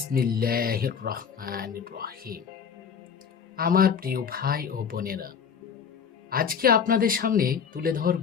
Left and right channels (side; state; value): right; quieter; 6.9 dB